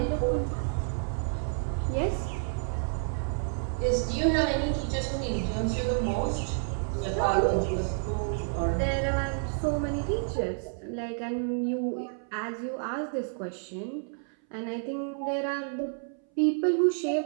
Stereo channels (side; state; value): left; silent; 58 dB below the other